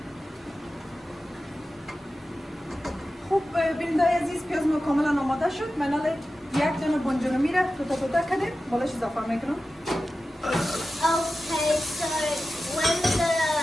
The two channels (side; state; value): both; normal; correlation 0.93